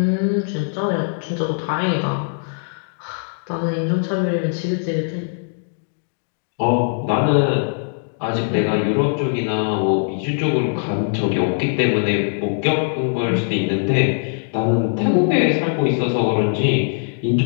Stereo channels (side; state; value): right; silent; digital silence